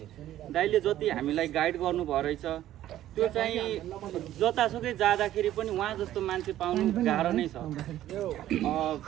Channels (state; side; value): quieter; left; 13.1 dB